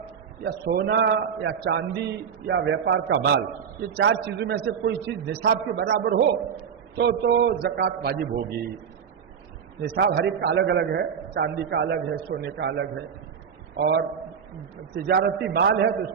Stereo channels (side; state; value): left; quieter; 7.3 dB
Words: یا سونا یا چاندی یا ویپار کا مال یہ 4 چیزوں میں سے کوئی چیز نصاب کے برابر ہو تو زکوٰۃ واجب ہوگی. نصاب ہر ایک کا الگ الگ ہے. چاندی کا الگ ہے سونے کا الگ ہے اور تجارتی مال ہے تو